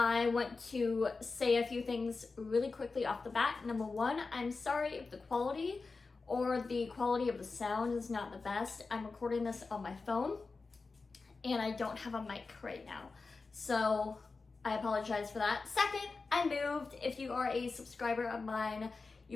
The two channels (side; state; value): right; quieter; 4.1 dB